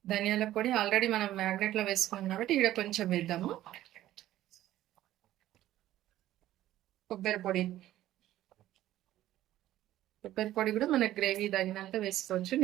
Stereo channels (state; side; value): quieter; left; 13.9 dB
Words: ధనియాల పొడి ఆల్రెడీ మనం మ్యాగ్నెట్లో వేసుకున్నాం కాబట్టి ఇక్కడ కొంచెం వేద్దాము. కొబ్బరి పొడి కూడా మన గ్రేవీ తగినంత వేసుకోవచ్చు.